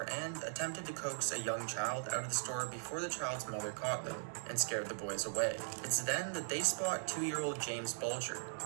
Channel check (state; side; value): silent; left; digital silence